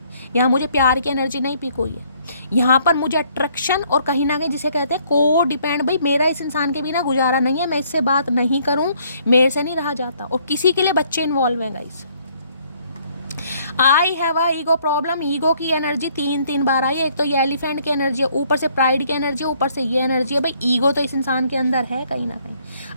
यहाँ मुझे प्यार की एनर्जी नहीं पिक हुई है, यहाँ पर मुझे अट्रैक्शन और कहीं ना कहीं जिसे कहते हैं को डिपेंड। भाई मेरा इस इंसान के बिना गुजारा नहीं है, मैं इससे बात नहीं करूँ, मेरे से नहीं रहा जाता। और किसी के लिए बच्चे इन्वॉल्व हैं guys. I have a ego problem. Ego की एनर्जी 3 बार आई है। एक तो ये एलिफेंट की एनर्जी है, ऊपर से प्राइड की एनर्जी, ऊपर से ये एनर्जी है। भाई ईगो तो इस इंसान के अंदर है कहीं ना कहीं।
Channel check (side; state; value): both; inverted; correlation -0.65